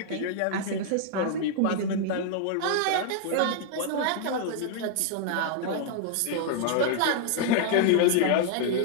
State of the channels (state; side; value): different; both; correlation 0.00